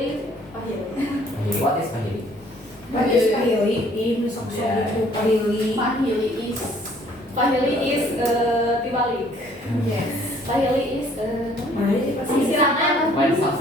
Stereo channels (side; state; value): both; normal; correlation 0.59